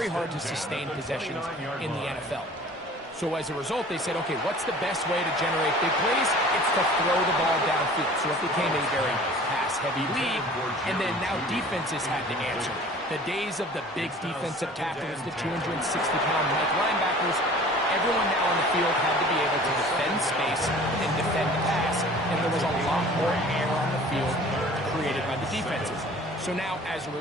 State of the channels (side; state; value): both; normal; correlation 0.46